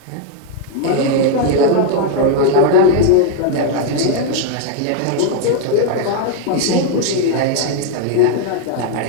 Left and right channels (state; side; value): different; both; correlation 0.00